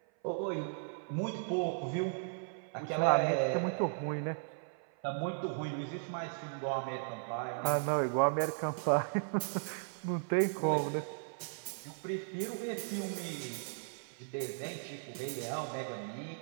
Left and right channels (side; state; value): left; silent; 54 dB below the other